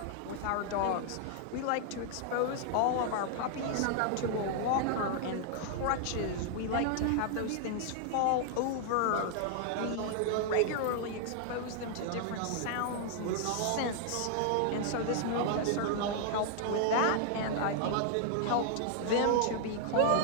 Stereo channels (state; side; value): different; both; correlation 0.00